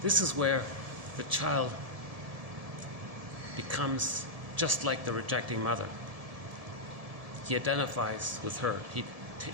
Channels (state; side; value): late; left; 1.7 ms